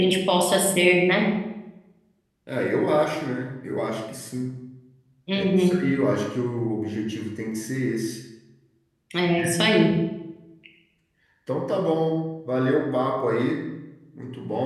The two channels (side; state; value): both; identical; correlation 1.00